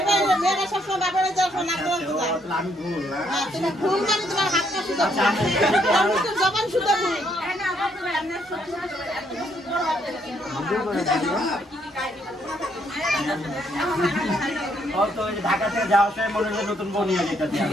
সবসময় বাপের নাক গলা সোজা। আমি ভুল না হ্যাঁ, তুমি ভুল মানে তোমার হাতটা সোজা ভুল। তোমার জবান সোজা ভুল। ও তো ওই ঢাকা থেকে যাওয়ার সময় মনে হয় নতুন বউ নিয়ে যেতে চাই।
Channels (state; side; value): normal; both; correlation 0.71